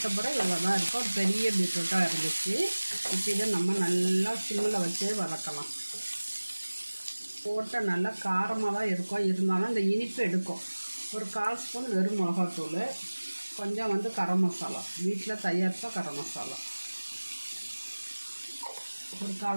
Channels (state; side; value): inverted; both; correlation -1.00